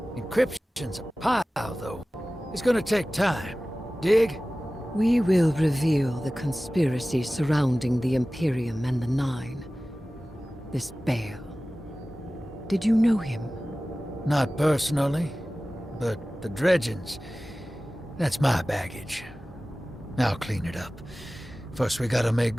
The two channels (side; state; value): both; normal; correlation 0.97